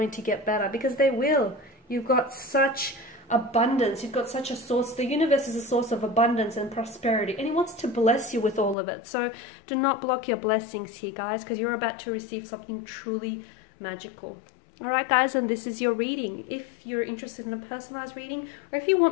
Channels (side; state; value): right; drops out; at 8.8 s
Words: to get better, because they will. You've got such abundance, you've got such a source. The universe is a source of abundance and prosperity, and it wants to bless you with all of it. So do not block your blessings here, guys, because you're about to receive something truly magical. All right, guys, and this is your reading. If you're interested in a personalized reading, or if you want